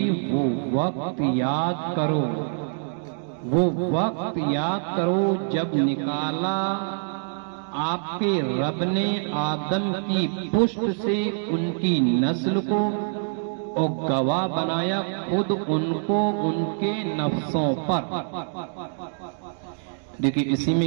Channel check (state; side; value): silent; left; digital silence